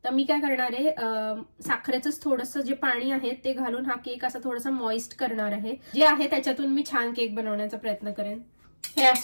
तर मी काय करणार आहे साखरेचंच थोडंसं जे पाणी आहे ते घालून हा केक असा थोडासा मॉइस्ट करणार आहे. जे आहे त्याच्यातून मी छान केक बनवण्याचा प्रयत्न करेन. हे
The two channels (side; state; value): both; inverted; correlation -1.00